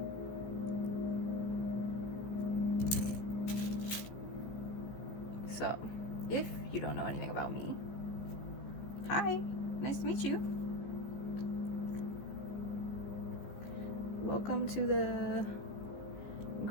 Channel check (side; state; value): right; late; 15 ms